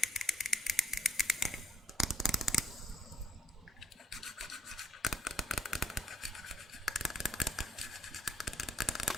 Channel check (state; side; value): normal; both; correlation 0.69